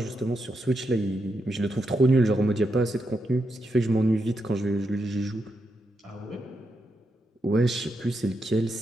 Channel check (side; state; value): both; normal; correlation 0.84